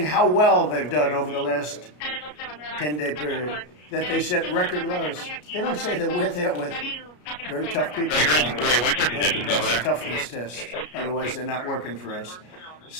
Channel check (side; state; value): right; late; 33 ms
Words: how well they've done over the last 10-day period, that they set record lows. They don't say that we're there with very tough people. They have to pass a toughness test, otherwise they're not working for us.